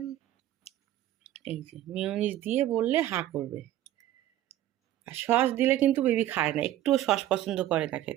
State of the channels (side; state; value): left; quieter; 13.2 dB